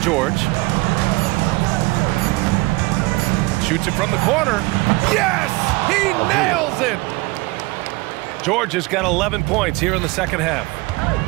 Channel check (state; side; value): quieter; left; 23.2 dB